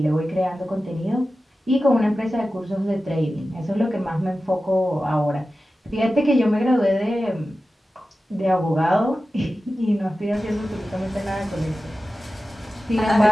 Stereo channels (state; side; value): normal; both; correlation 0.94